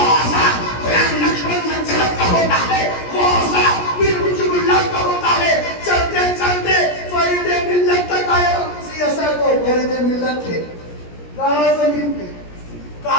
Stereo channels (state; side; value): late; right; 17 ms